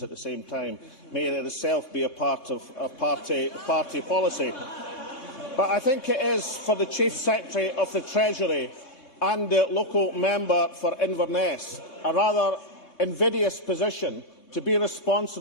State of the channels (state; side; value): late; right; 3.6 ms